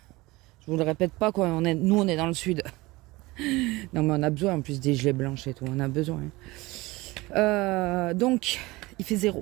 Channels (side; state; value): left; quieter; 21.3 dB